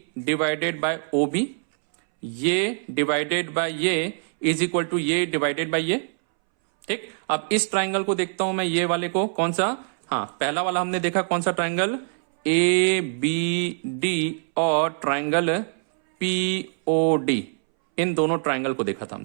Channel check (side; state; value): left; silent; 63 dB below the other